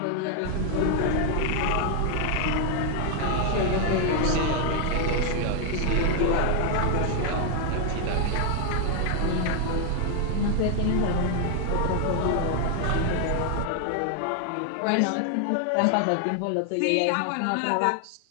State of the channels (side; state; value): both; different; correlation 0.00